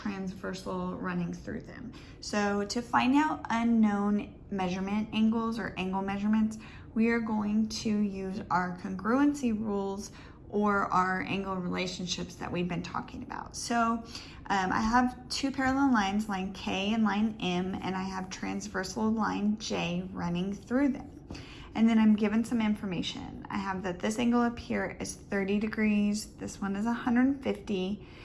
running through them. So to find out unknown measurement angles or angle measurements, we are going to use our congruency rules or our angle relationships that we've been talking about. So I have two parallel lines, line K and line M, and I have transversal line J running through them. And then I'm given some information. I have that this angle up here is 30 degrees, this one is 150,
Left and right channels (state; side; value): identical; both; correlation 1.00